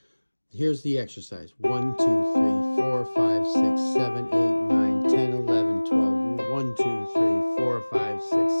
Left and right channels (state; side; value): inverted; both; correlation -1.00